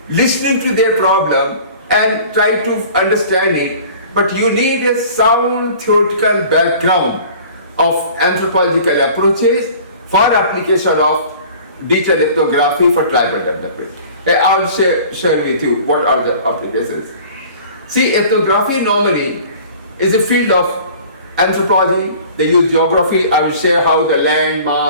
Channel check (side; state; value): both; inverted; correlation -0.46